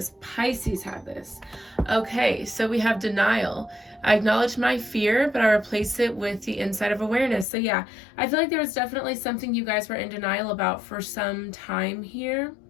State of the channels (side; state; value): right; drops out; at 7.5 s